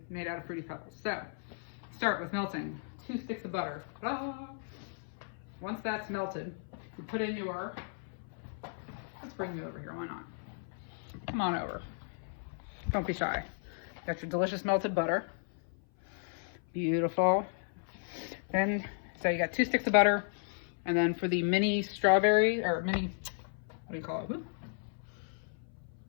made out of Fruity Pebbles. So, start with melting 2 sticks of butter. Ah! Once that's melted, you put in your, let's bring you over here, why not? Come on over. Don't be shy. Got your delicious melted butter. Beautiful. Then, so you got 2 sticks of butter, and then for the mini strawberry, or mini, what do you call it? Whoop.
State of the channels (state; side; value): silent; right; 55 dB below the other